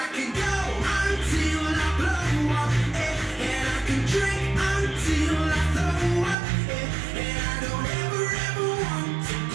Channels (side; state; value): left; drops out; at 6.4 s